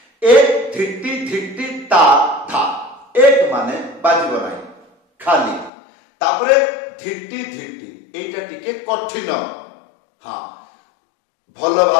एक धिट्टी धिट्टी ता धा। एक माने बाजिबो नाही खाली। तापरे धिट्टी धिट्टी एटा टिके कठिन। हाँ भल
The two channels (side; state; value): right; drops out; at 5.7 s